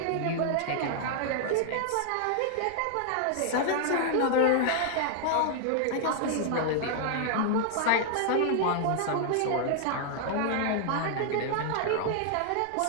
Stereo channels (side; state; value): both; different; correlation 0.00